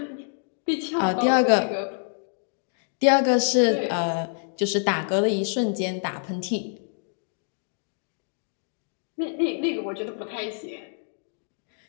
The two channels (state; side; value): silent; right; 60 dB below the other